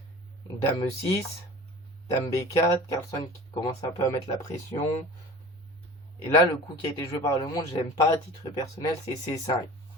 Dame E6, Dame B4, Carlsen qui commence un peu à mettre la pression. Et là, le coup qui a été joué par le monde, je l'aime pas à titre personnel, c'est C5.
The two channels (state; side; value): normal; both; correlation 0.39